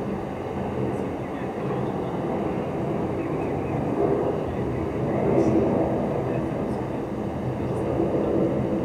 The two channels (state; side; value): identical; both; correlation 1.00